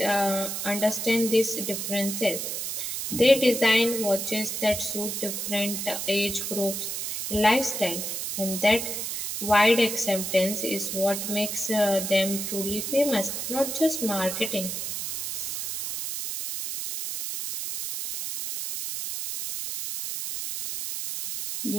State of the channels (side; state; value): right; noise; hiss, 4 dB below the sound